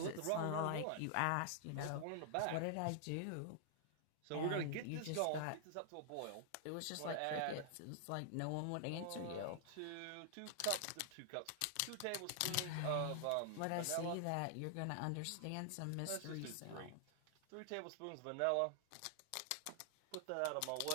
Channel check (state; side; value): different; both; correlation 0.00